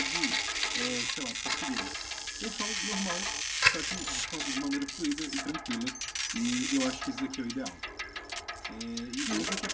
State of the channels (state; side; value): identical; both; correlation 1.00